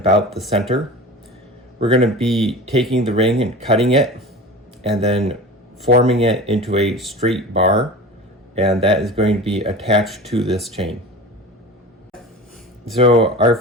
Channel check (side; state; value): both; normal; correlation 0.34